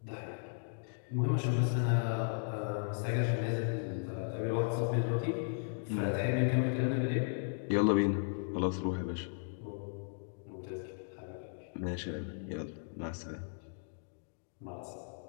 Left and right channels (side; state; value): right; silent; digital silence